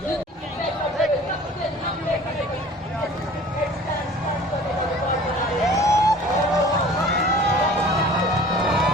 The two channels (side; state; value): both; normal; correlation 0.46